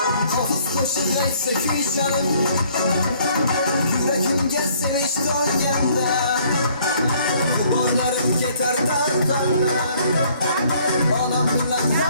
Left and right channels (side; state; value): both; inverted; correlation -0.62